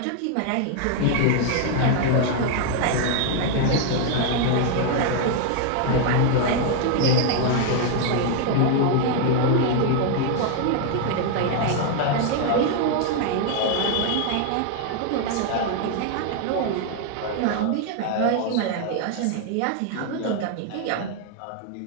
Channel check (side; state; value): both; different; correlation 0.00